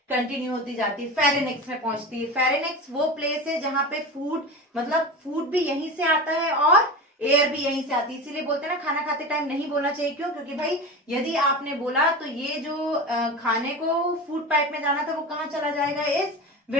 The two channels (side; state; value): both; normal; correlation 0.27